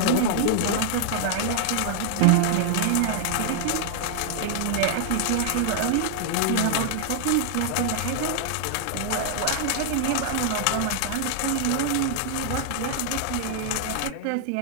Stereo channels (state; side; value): different; both; correlation 0.00